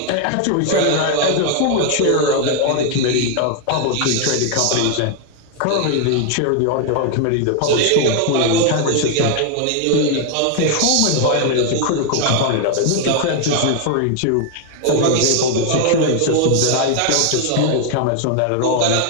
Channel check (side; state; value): both; different; correlation 0.00